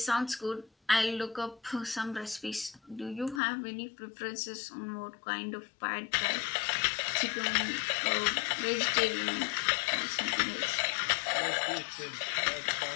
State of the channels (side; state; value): right; drops out; at 3.4 s